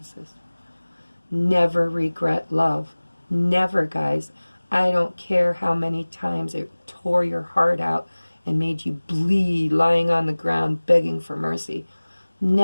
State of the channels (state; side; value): inverted; both; correlation -1.00